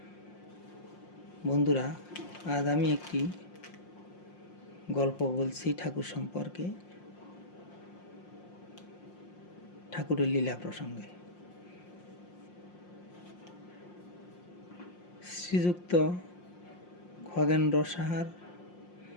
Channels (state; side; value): late; right; 5.6 ms